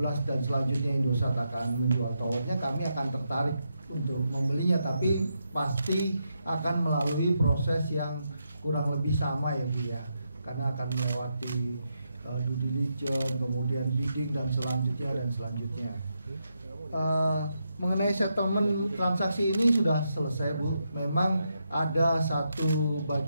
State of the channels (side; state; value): both; inverted; correlation -0.83